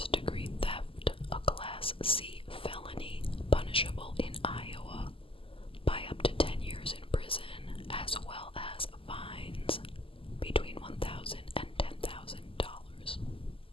theft, a Class C felony punishable in Iowa by up to 10 years in prison, as well as fines between $1,000 and $10,000.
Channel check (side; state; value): right; late; 0.26 ms